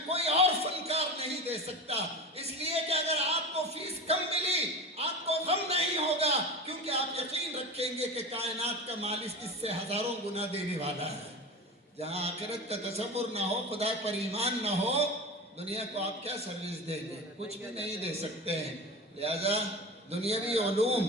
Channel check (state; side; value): normal; both; correlation 0.29